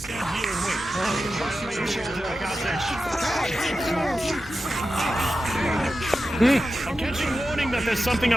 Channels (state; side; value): normal; both; correlation 0.92